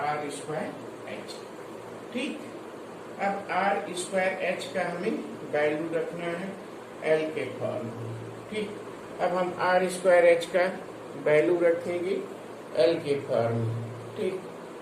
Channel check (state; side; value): identical; both; correlation 1.00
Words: आर स्क्वायर एच। ठीक, अब आर स्क्वायर एच का हमें वैल्यू रखना है एल के फॉर्म में। ठीक, अब हम आर स्क्वायर एच का वैल्यू रखेंगे एल के फॉर्म में। ठीक,